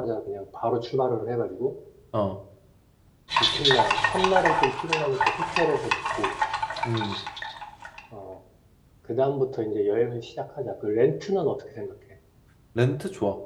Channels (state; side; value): identical; both; correlation 1.00